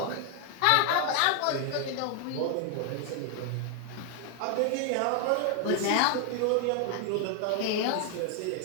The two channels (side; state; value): both; different; correlation 0.00